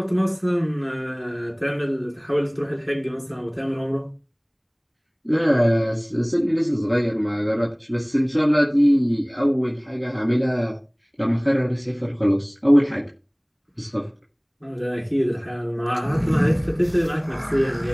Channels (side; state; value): both; identical; correlation 1.00